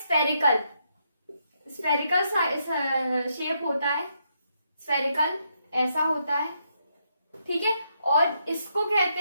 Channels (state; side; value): inverted; both; correlation -0.78